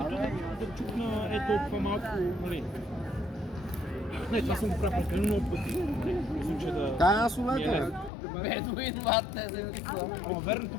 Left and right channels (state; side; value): drops out; right; at 8.1 s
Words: да чукна толкова малко, нали. Не, това съм го правил прекалено много пъти. Мисля, че да... Аз ми е улета, бе. лесно. Бедуин, мате, вземете Ама верно,